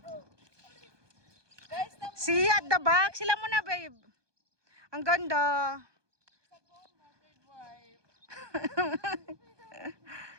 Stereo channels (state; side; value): late; left; 1.2 ms